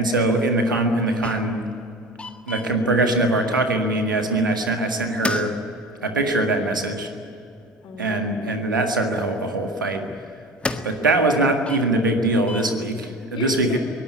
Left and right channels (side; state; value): both; normal; correlation 0.35